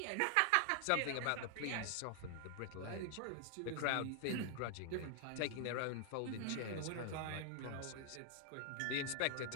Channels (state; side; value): different; both; correlation 0.00